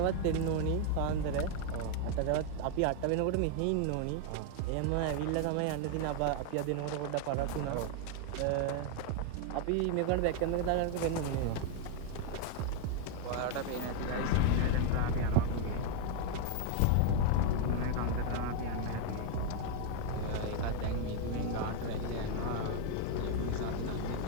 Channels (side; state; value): both; different; correlation 0.00